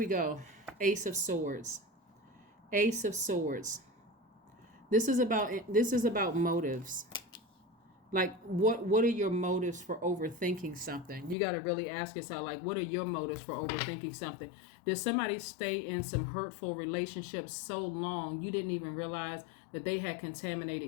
go. Ace of Swords. Ace of Swords. This is about motives. Like, what are your motives for overthinking something? You got to really ask yourself, like, what are your motives for overthinking something? Did somebody stay in some hurtful relationships so long you didn't even realize that they had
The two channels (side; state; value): right; drops out; at 11.4 s